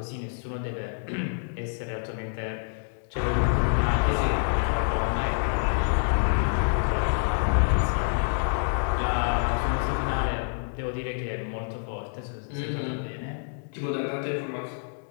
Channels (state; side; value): silent; right; digital silence